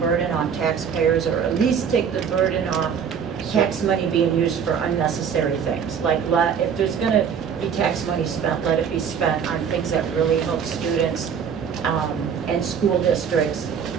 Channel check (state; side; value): quieter; left; 7.3 dB